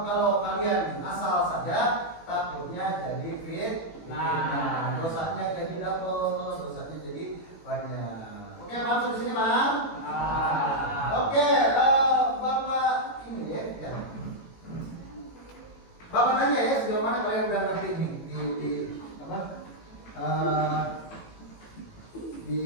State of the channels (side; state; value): right; late; 18 ms